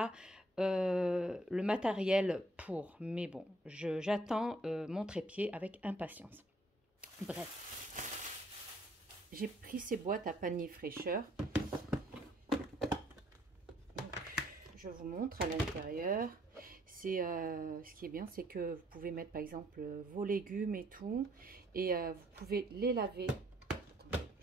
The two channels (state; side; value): normal; both; correlation 0.65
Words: le matériel pour. Mais bon, j'attends mon trépied avec impatience. Bref, j'ai pris ces boîtes à panier fraîcheur. Je vous montre à l'intérieur. C'est ce qui est bien, c'est que vous pouvez mettre par exemple vos légumes et tout, et vous pouvez les laver. Attendez,